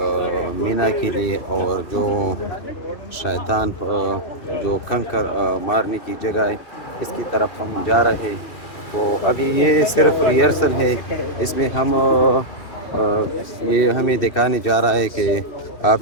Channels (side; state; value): right; late; 2.6 ms